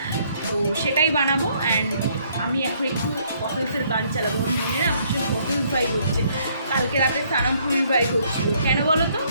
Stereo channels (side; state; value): both; inverted; correlation -0.67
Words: তো সেটাই বানাবো। অ্যান্ড আমি এখন একটু বটলসের গান চালাবো, আমার মনে না ভীষণ বটলস ভাইব হচ্ছে। কালকে রাতে সানামপুরির ভাইব হচ্ছিলো, কেন বলো তো?